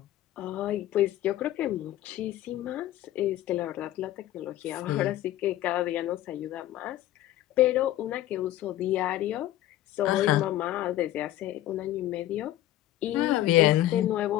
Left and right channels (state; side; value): quieter; right; 14.0 dB